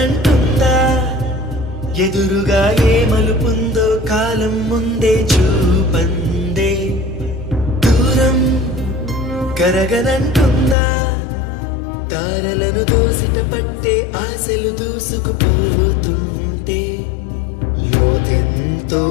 ఎదురుగా ఏ మలుపుందో కాలం ముందే చూపందే దూరం కరగనంటుందా తారలను దోసిట పట్టే ఆశలు దూసుకుపోతుంటే లోతెంతో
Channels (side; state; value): right; drops out; at 10.8 s